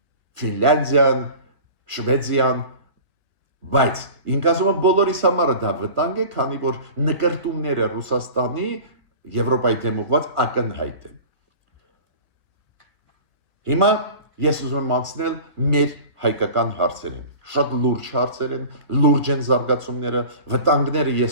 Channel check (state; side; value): late; left; 1.6 ms